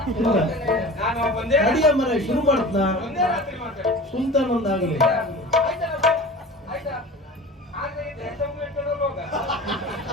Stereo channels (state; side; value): normal; both; correlation 0.37